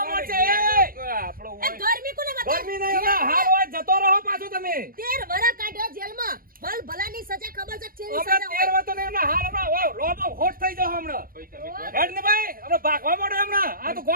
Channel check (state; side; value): late; left; 0.41 ms